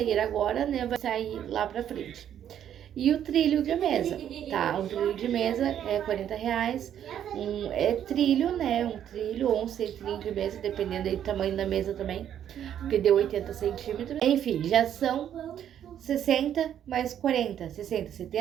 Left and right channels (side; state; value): left; quieter; 10.0 dB